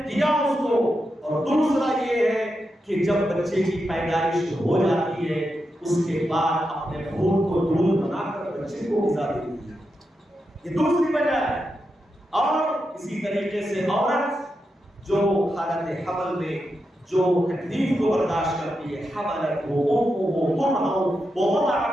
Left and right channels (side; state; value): both; normal; correlation 0.87